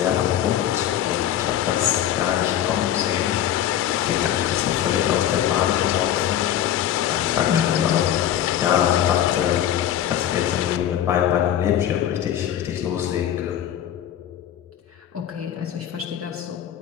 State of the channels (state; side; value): quieter; right; 11.1 dB